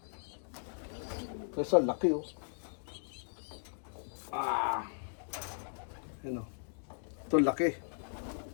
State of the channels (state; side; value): silent; right; digital silence